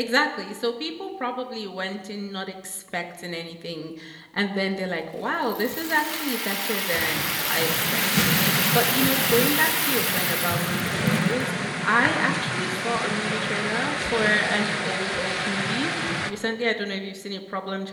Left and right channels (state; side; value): identical; both; correlation 1.00